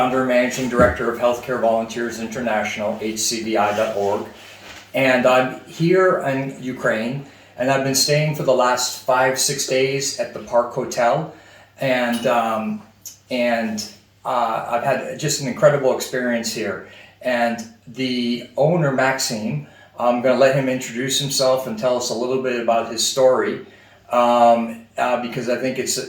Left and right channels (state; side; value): identical; both; correlation 1.00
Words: and managing director of Healthcare Volunteers International, hcvi.org. And I'm here in Ukraine, and I've been staying for the last 5-6 days at the Park Hotel, and I've had just an incredible experience here. And the owner, Maxime, I'm going to let him introduce himself and tell us a little bit about his story, because I think